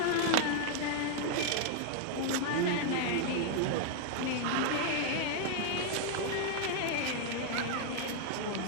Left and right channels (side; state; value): both; different; correlation 0.00